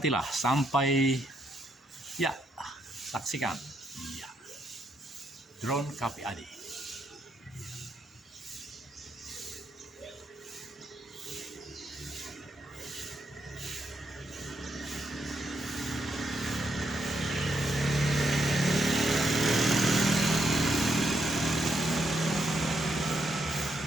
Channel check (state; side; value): normal; both; correlation 0.79